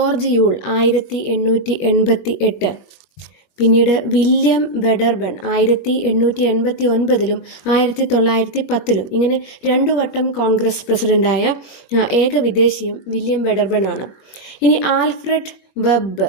യൂൾ 1888, പിന്നീട് വില്യം വെഡർബൺ 1889 1910. ഇങ്ങനെ 2 വട്ടം കോൺഗ്രസ് പ്രസിഡൻ്റായ ഏക വിദേശിയും വില്യം വെഡർബൺ ആണ്. ഇനി Alfred web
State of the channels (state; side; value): late; right; 20 ms